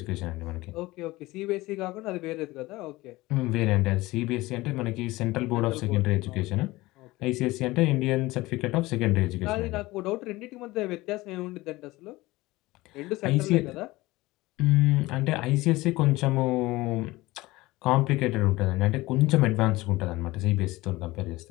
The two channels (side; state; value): right; quieter; 19.7 dB